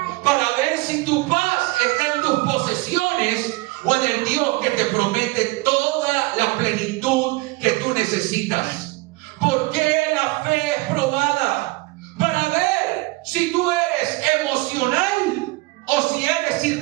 Para ver si tu paz está en tus posesiones o en el Dios que te promete toda la plenitud que tú necesitas. ¿Por qué la fe es probada? Para ver si tú eres emocional o si eres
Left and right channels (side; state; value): left; quieter; 22.4 dB